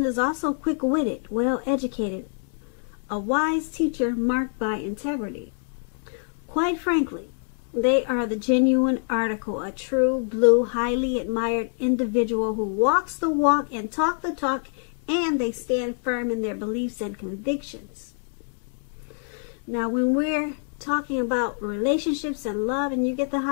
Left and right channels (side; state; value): right; silent; 61 dB below the other